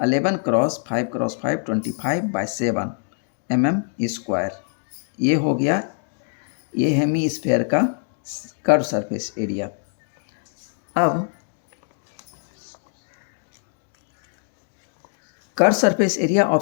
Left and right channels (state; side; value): silent; right; digital silence